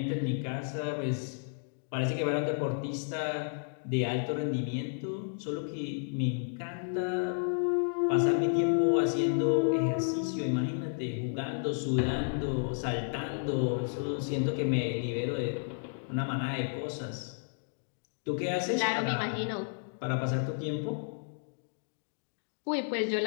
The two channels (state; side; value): silent; right; digital silence